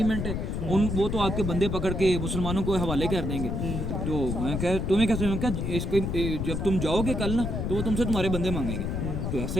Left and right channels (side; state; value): left; noise; rumble, 2 dB below the sound